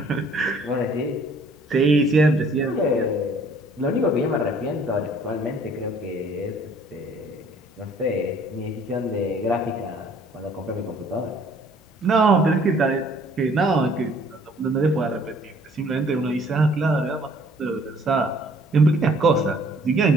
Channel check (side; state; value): both; normal; correlation 0.58